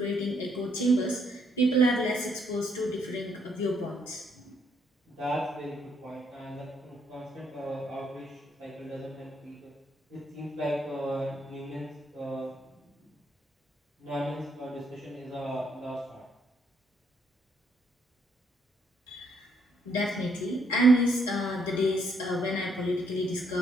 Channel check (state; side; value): normal; both; correlation 0.72